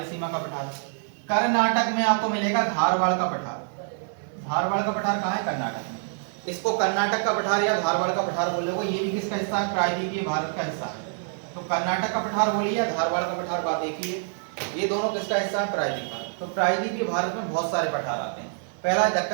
का पठार। कर्नाटक में आपको मिलेगा धारवाड़ का पठार। धारवाड़ का पठार कहाँ है, कर्नाटक में। इसको कर्नाटक का पठार या धारवाड़ का पठार बोलोगे। ये भी किसका हिस्सा है, प्रायद्वीपीय भारत का हिस्सा है। तो कर्नाटक का पठार बोलिए या धारवाड़ का पठार, बात एक ही है। ये दोनों किसका हिस्सा है, प्रायद्वीप भारत। तो प्रायद्वीपीय भारत में बहुत सारे पठार आते हैं। पहला है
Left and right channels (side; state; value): left; silent; 60 dB below the other